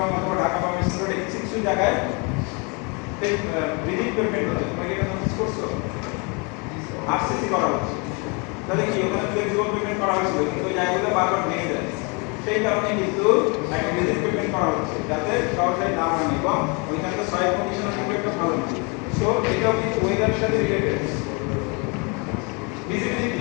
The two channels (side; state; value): right; quieter; 31.9 dB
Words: অথবা ঢাকা বা মিরপুরে কিছু জায়গায় রিজিড পেমেন্ট হচ্ছে, তোমরা কি এটা নোটিস করছো? আরসিসি করা হচ্ছে, তাহলে কি ওখানে ফ্লেক্সিবল পেমেন্ট করা হয়েছিল কিন্তু ওই জায়গাগুলো বারবার ভেঙে যায়, সেই কারণে কিন্তু একটা রিজিড পেমেন্ট করা হচ্ছে যাতে সহজে না ভাঙে এবং ওইখানকার সয়েল কন্ডিশনের কিন্তু একটা ভালো না। সো এটাও কিন্তু ওয়েদারের সাথে related.